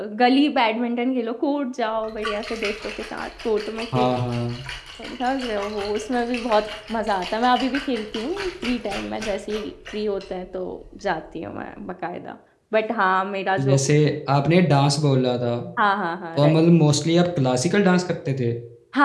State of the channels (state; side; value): identical; both; correlation 1.00